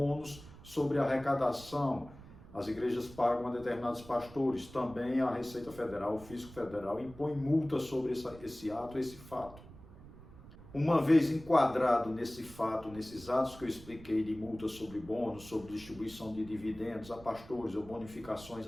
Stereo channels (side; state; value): right; noise; rumble, 18 dB below the sound